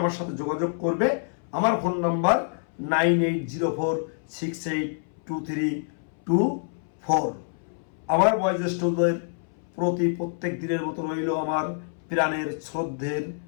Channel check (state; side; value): silent; right; 61 dB below the other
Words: সাথে যোগাযোগ করবে। আমার ফোন নাম্বার 9804682324। আমার বয়োজ্যেষ্ঠদের প্রতি প্রত্যেক দিনের মতো রইল আমার প্রাণের শ্রদ্ধের